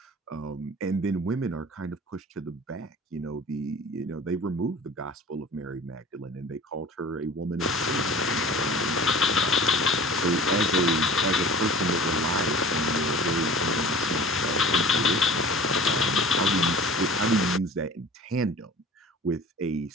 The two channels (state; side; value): normal; both; correlation 0.43